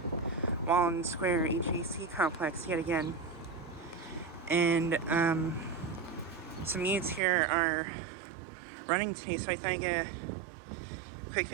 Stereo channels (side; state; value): left; drops out; at 7.2 s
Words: Walden Square HVAC Complex yet again, and some units here are running today, so I thought I'd get a quick